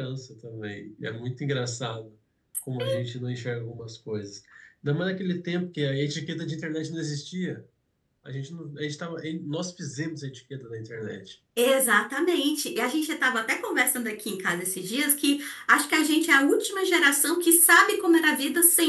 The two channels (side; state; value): both; identical; correlation 1.00